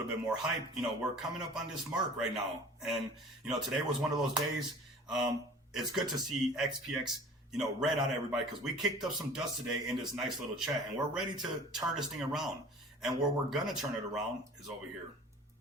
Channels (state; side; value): normal; both; correlation 0.44